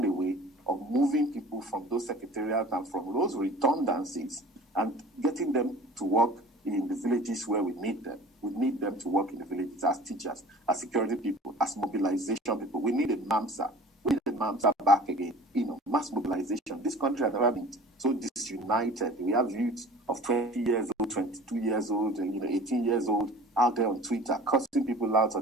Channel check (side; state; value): both; normal; correlation 0.43